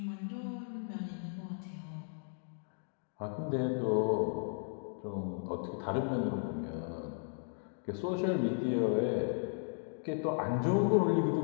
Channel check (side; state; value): right; silent; digital silence